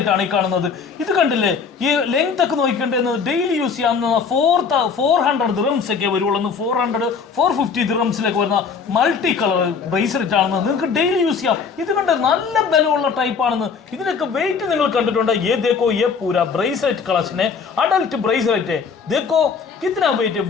ആണ് ഈ കാണുന്നത്. ഇത് കണ്ടില്ലേ, ഈ ലെങ്ത് ഒക്കെ നോക്കിക്കേണ്ടത് ഡെയിലി യൂസ് ചെയ്യാവുന്ന 400 ദിറംസ് ഒക്കെ വരുള്ളൂ. 450 ദിറംസിലൊക്കെ വരുന്ന മൾട്ടി കളർ ബ്രേസ്ലെറ്റ് ആണെന്ന് നിങ്ങൾക്ക് ഡെയിലി യൂസ് ചെയ്യാം. ഇത് കണ്ട് നല്ല ബലമുള്ള ടൈപ്പ് ആണെന്ന്. ഇതിനൊക്കെ വെയിറ്റ് നിങ്ങൾ കണ്ടിട്ടുണ്ട്. ये देखो ये पूरा ब्रेसलेट कलेक्शन है, अडल्ट ब्रेसलेट है. देखो कितना वेट है,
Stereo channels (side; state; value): right; quieter; 5.8 dB